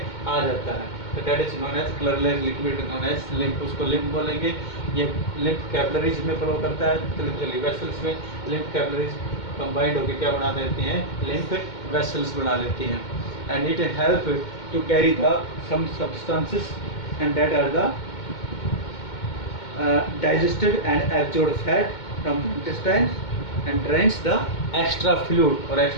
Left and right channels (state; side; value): late; right; 2.2 ms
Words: आ जाता है. तो that is known as colourless liquid known as lymph. उसको लिम्फ बोलेंगे. ये लिम्फ कैपिलरीज में फ्लो करता है, वेसल्स में लिम्फ कैपिलरीज कंबाइंड होकर क्या बना देती हैं, लिम्फ वेसल्स बना लेती हैं. And it help to carry the some substances and that are the digested and absorbed fat from intestines and drains the extra fluid, और